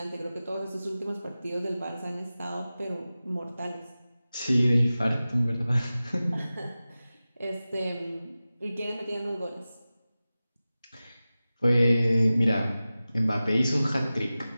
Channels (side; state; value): both; inverted; correlation -0.96